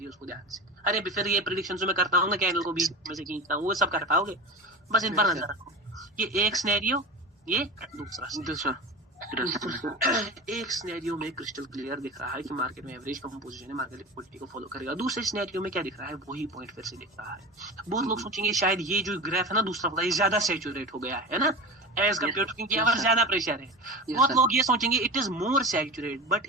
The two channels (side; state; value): both; normal; correlation 0.29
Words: को ध्यान से। अरे फिर ये प्रेडिक्शन जो मैं करता हूँ ना, कैंडल को बीच में से खींचता हूँ, वो सब कर पाओगे? बस इन पर नजर रखो। ये एक सिनेरियो, ये दूसरा। एक सिनेरियो में क्रिस्टल क्लियर दिख रहा है कि मार्केट में एवरेज कंपोजिशन है, मार्केट लिक्विडिटी को फॉलो करेगा। दूसरे सिनेरियो में क्या दिख रहा है, वही पॉइंट फिर से दिख रहा है। बहुत लोग सोचेंगे शायद ये जो ग्राफ है ना दूसरा वाला, ये ज्यादा सैचुरेट हो गया है ना एज कम्पेयर टू, क्योंकि यहाँ पर ज्यादा प्रेशर है। बहुत लोग ये सोचेंगे it is more saturate, but